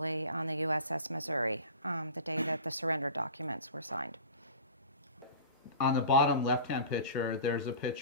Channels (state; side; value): inverted; both; correlation -0.37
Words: on the USS Missouri the day that the surrender documents were signed. On the bottom left-hand picture, there's a